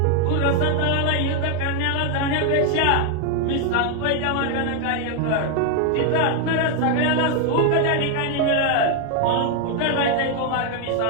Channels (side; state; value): both; different; correlation 0.00